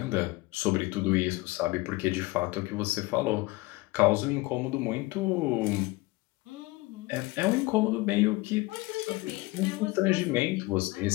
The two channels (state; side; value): quieter; right; 22.0 dB